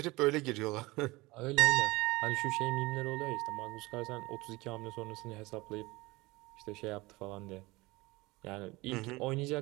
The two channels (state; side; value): quieter; left; 22.1 dB